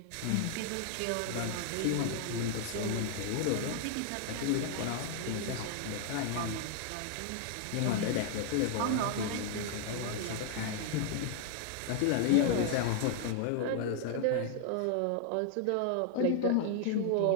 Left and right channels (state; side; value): different; both; correlation 0.00